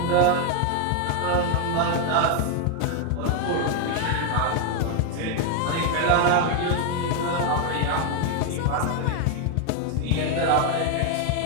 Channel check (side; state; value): both; different; correlation 0.01